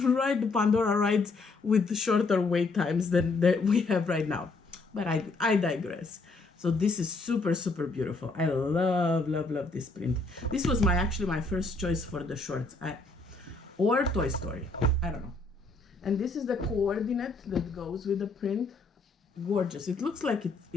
ride the Pandora rides with shorter wait times than we have right now. But I digress. So this is super beautiful. I love this print. This was actually my first choice for the shorts. Or Toy Story. I don't know. And this is the coordinate that goes with the print. Gorgeous. It looks like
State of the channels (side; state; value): right; quieter; 3.5 dB